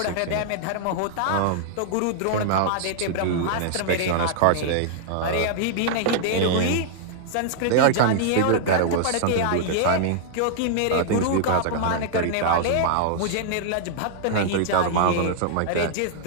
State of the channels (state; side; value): different; both; correlation -0.01